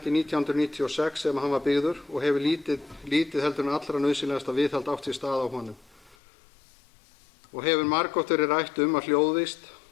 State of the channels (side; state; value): right; drops out; at 6.2 s